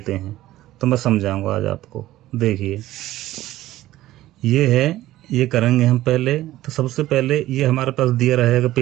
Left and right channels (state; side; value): quieter; left; 15.3 dB